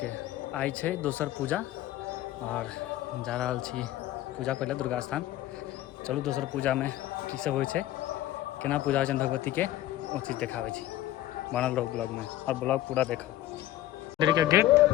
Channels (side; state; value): right; quieter; 14.3 dB